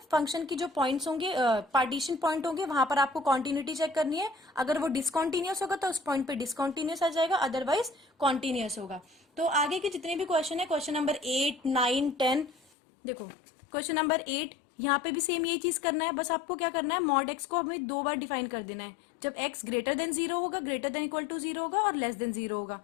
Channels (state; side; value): drops out; right; at 12.6 s